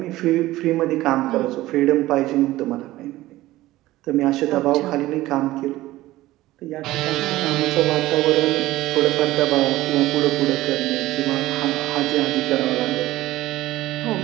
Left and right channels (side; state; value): left; quieter; 16.8 dB